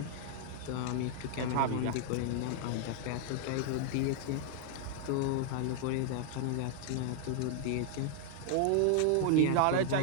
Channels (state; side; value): different; both; correlation 0.00